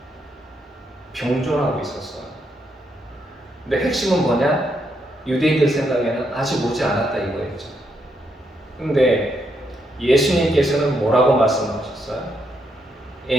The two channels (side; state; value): both; normal; correlation 0.78